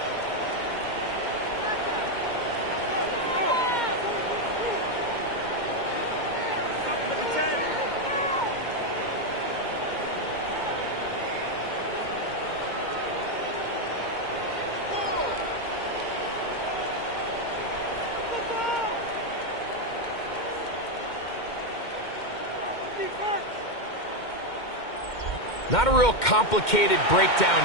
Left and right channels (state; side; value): late; right; 2.1 ms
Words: Not a real complicated